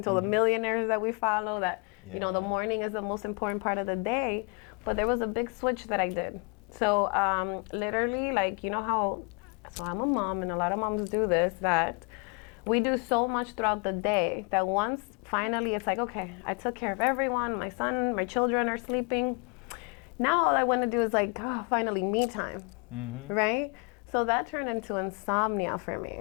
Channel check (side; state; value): right; quieter; 33.4 dB